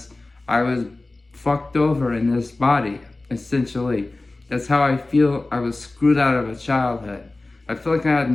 I was fucked over in this body, essentially. That's how I feel. I was screwed out of a childhood. I feel like I had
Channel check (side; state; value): right; quieter; 3.0 dB